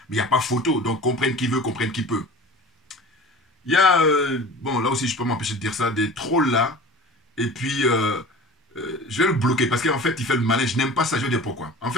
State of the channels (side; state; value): both; normal; correlation 0.39